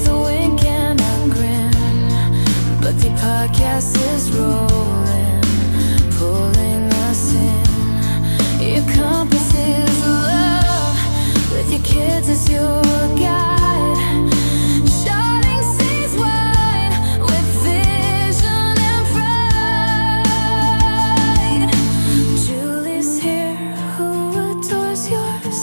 a wink and a grin. But the podcast is rolling, pulling us in. Your compass is love, with your kids as your guide. Shining seas wide, with vision and pride. Julie's here, who adores your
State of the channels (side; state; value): both; inverted; correlation -1.00